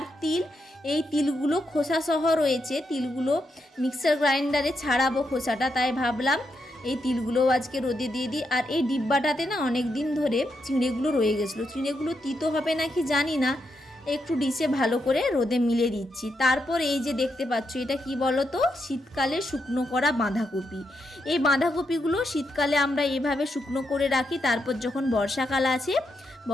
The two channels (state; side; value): normal; both; correlation 0.82